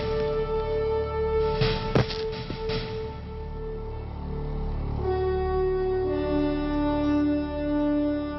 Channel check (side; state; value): both; identical; correlation 1.00